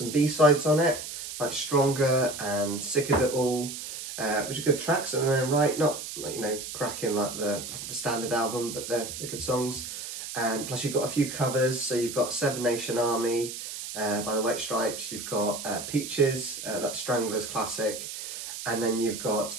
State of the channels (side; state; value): right; noise; hiss, 8 dB below the sound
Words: B-sides on it, like Stronger and Sick of It All, which are good tracks in their own right, not like, you know, cracking like the standard album, but they're good songs. Plus you've got a few covers, so you've got Seven Nation Army by the White Stripes, you've got Peaches, that's Strangler's classic, and then you've got